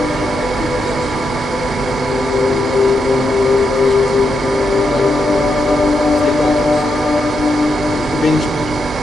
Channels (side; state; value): both; normal; correlation 0.82